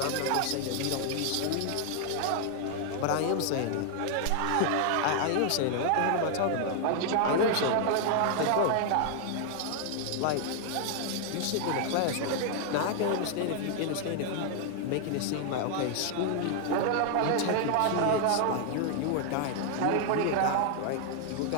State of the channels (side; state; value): both; different; correlation 0.00